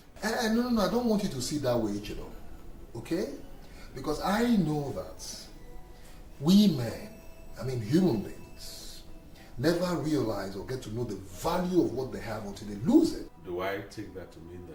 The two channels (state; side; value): identical; both; correlation 1.00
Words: No, I don't want you to see that way, Ichido. Okay? Because I know that we men, human beings, never realize or get to know the value of what they have until they lose it. Do I take that to mean